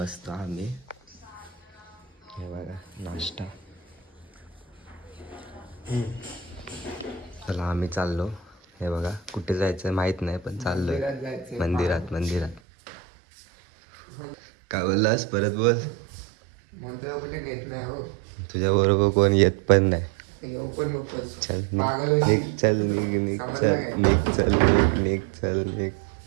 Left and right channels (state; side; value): drops out; left; at 12.6 s